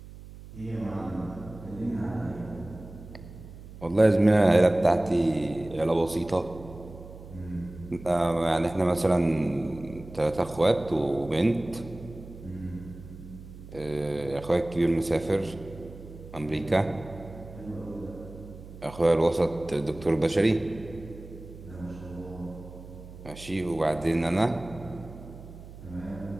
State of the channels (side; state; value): right; noise; hum, 16 dB below the sound